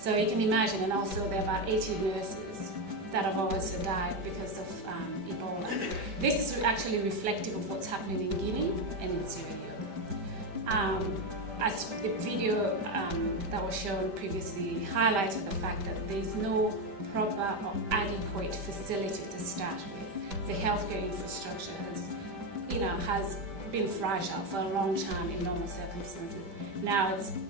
you can imagine, and also there are about 80 nurses that have also died because of Ebola. This is actually reflective of what's happening in Guinea and in Sierra Leone. As the video that was shown previously highlighted the fact that there is no proper or adequate facility to start with. The healthcare infrastructure has been fragile for a long time in normal circumstances. Now it's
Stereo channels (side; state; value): left; late; 5.1 ms